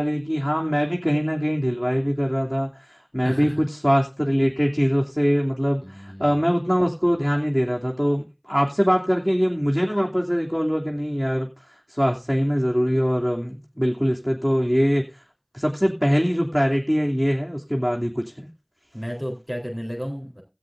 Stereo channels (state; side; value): identical; both; correlation 1.00